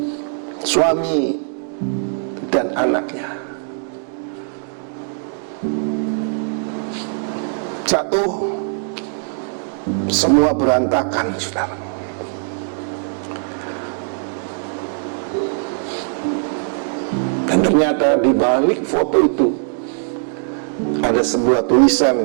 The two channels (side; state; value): left; silent; digital silence